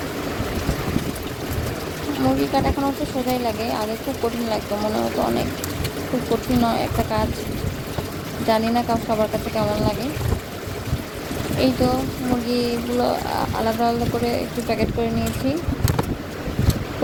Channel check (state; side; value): identical; both; correlation 1.00